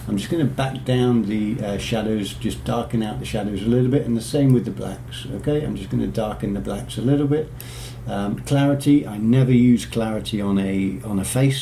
I'm just going to back down the shadows, just darken out the shadows a little bit, and the same with the blacks. Okay, I'm just going to darken the blacks a little bit. Clarity, I never use clarity on a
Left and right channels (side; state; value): both; identical; correlation 1.00